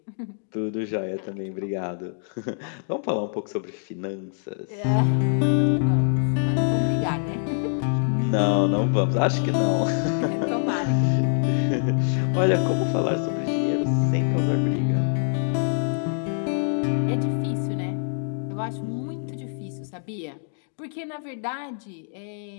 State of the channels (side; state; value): right; silent; digital silence